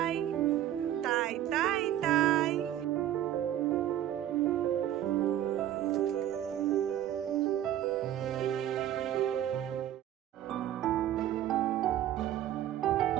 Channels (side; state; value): left; quieter; 11.9 dB